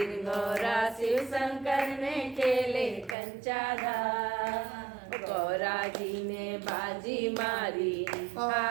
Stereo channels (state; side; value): drops out; left; at 3.2 s